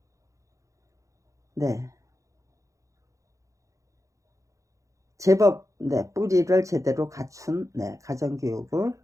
네. 제법 네 뿌리를 제대로 갖춘 네 가정교육을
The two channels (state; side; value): late; left; 0.15 ms